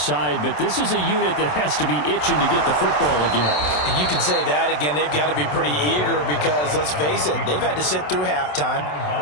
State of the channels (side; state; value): right; late; 27 ms